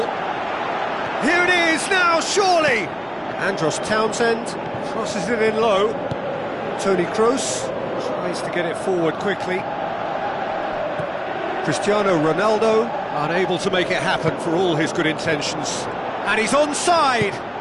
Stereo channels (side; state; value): both; identical; correlation 1.00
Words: Here it is now, surely! Andros Townsend crosses it in low. Toni Kroos tries to get it forward quickly. Cristiano Ronaldo unable to make it happen for all his good intentions. And he's onside!